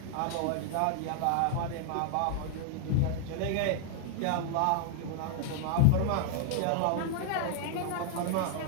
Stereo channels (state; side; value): different; both; correlation -0.01